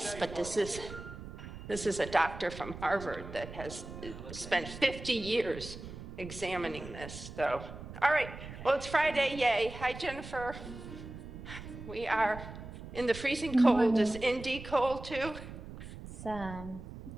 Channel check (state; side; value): noise; right; rumble, 12 dB below the sound